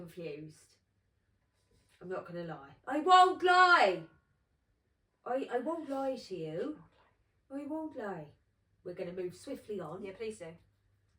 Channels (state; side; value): identical; both; correlation 1.00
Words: I'm not gonna lie. I won't lie. I won't lie to you. I won't lie. We're gonna move swiftly on. Yeah, please do.